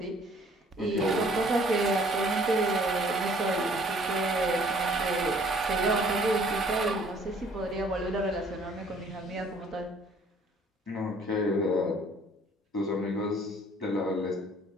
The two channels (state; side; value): normal; both; correlation 0.57